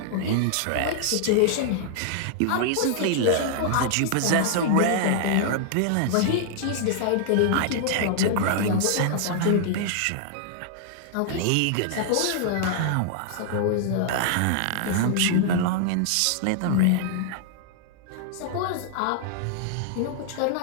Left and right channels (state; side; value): different; both; correlation -0.01